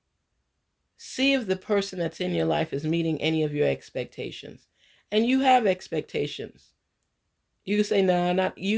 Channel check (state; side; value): identical; both; correlation 1.00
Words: See if the person that's in your life is meeting any of your expectations. And you have expectations. You can say, nah, not